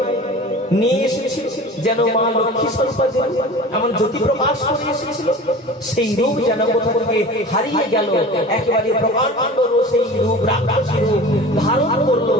নিয়ে এসেছিল, যেন মা লক্ষ্মী স্বরূপা এমন জ্যোতি প্রকাশ করে এসেছিল, সেই রূপ যেন কোথা থেকে হারিয়ে গেল। একেবারে প্রকাণ্ড সেই রূপ, রাক্ষসী রূপ ধারণ করলো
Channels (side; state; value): both; normal; correlation 0.38